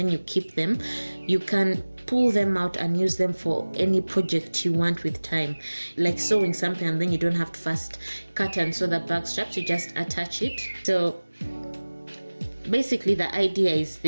you keep them, you can pull them out and use them for any project you want with time, like sewing something, and then you don't have to first cut and sew the bag straps, you just attach it. So basically the idea is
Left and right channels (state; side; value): inverted; both; correlation -1.00